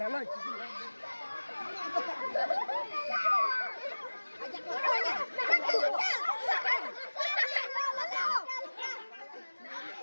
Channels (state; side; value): inverted; both; correlation -1.00